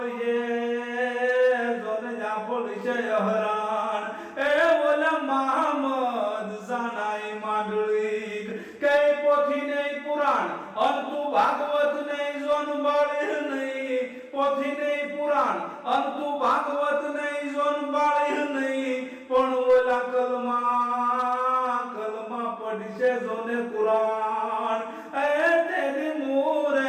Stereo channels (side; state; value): both; identical; correlation 1.00